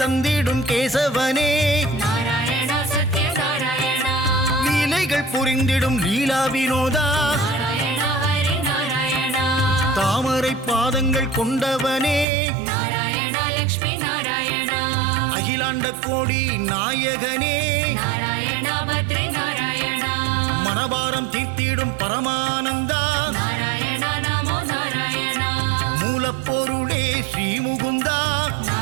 தந்திடும் கேசவனே நாராயண சத்ய நாராயண லீலைகள் புரிந்திடும் லீலா வினோதா நாராயண ஹரி நாராயண தாமரை பாதங்கள் கொண்டவனே நாராயண லக்ஷ்மி நாராயண அகிலாண்ட கோடி நாயகனே நாராயண பத்ரி நாராயண மனபாரம் தீர்த்திடும் பரமானந்தா நாராயண நமோ நாராயண மூலப்பொருளே ஸ்ரீமுகுந்தா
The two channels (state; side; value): drops out; left; at 12.2 s